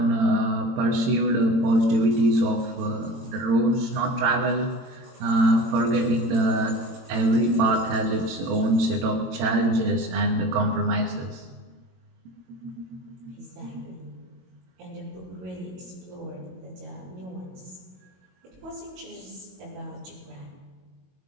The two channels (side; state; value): left; late; 22 ms